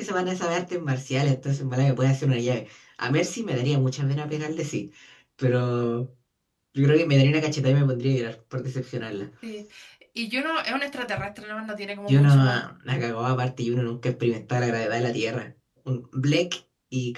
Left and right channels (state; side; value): identical; both; correlation 1.00